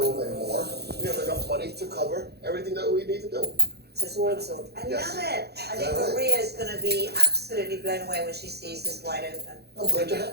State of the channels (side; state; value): left; late; 0.48 ms